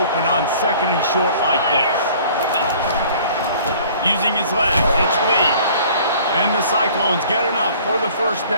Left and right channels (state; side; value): inverted; both; correlation -0.51